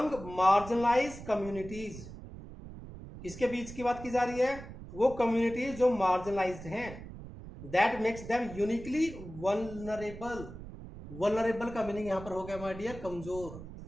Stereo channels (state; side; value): noise; right; rumble, 13 dB below the sound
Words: मार्जिनलाइज कम्युनिटीज, किसके बीच की बात की जा रही है, वो कम्युनिटीज जो मार्जिनलाइज्ड हैं, that makes them uniquely vulnerable. Vulnerable का मीनिंग यहां पर हो गया माय डियर कमजोर,